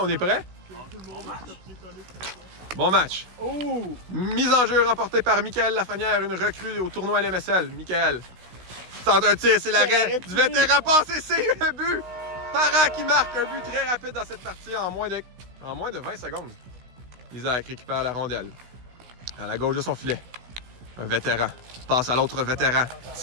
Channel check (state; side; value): late; left; 16 ms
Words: est prêt. Bon match. Mise en jeu remportée par Michael Lafrenière, une recrue au tournoi LMSL. Michael tente un tir, c'est l'arrêt du vétéran passé, c'est un but. Parent qui marque un but très rapide dans cette partie en moins de 20 secondes. Isaac récupère la rondelle à la gauche de son filet. Un vétéran passe à l'autre vétéran.